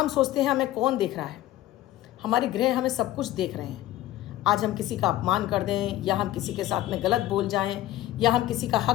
सोचते हैं हमें कौन देख रहा है, हमारे ग्रह हमें सब कुछ देख रहे हैं। आज हम किसी का अपमान कर दें या हम किसी के साथ में गलत बोल जाएं या हम किसी का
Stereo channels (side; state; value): right; quieter; 14.9 dB